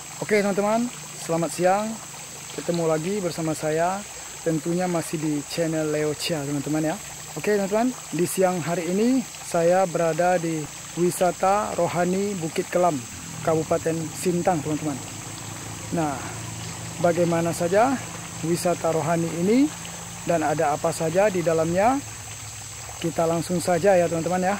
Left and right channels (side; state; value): both; identical; correlation 1.00